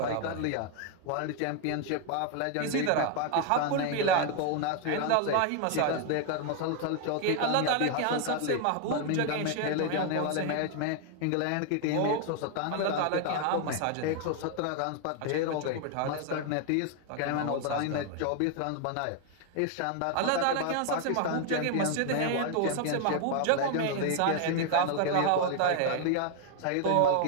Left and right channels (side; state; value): both; different; correlation 0.00